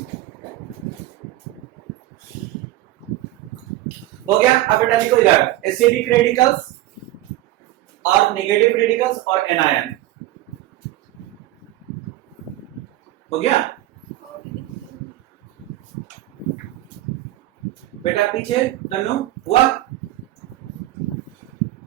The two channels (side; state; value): left; quieter; 15.7 dB